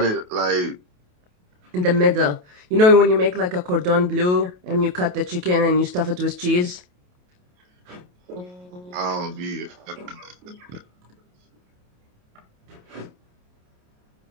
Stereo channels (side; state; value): left; late; 28 ms